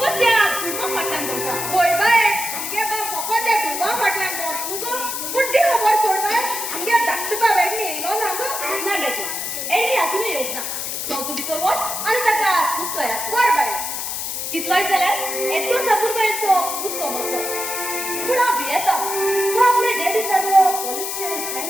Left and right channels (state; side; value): noise; left; hiss, 4 dB below the sound